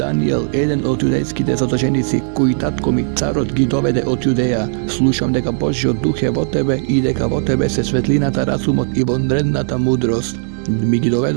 еден од јудејските задолженици, кои татко ми царот ги доведе од Јудеја? Слушам дека Божиот дух е во тебе и дека во тебе се светлината, разумот и вонредната мудрост. Ми ги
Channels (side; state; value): left; silent; digital silence